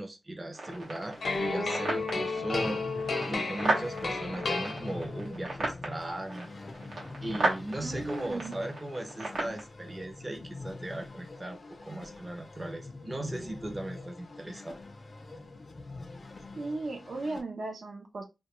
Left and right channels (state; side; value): normal; both; correlation 0.90